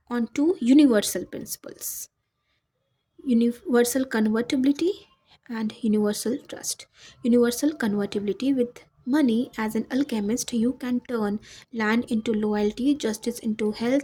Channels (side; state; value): both; identical; correlation 1.00